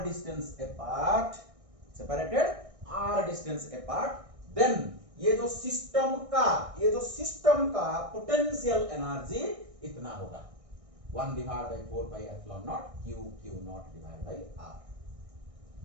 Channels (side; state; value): left; late; 1.6 ms